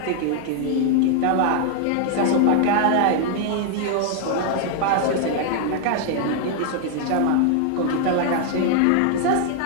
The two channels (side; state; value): both; different; correlation 0.00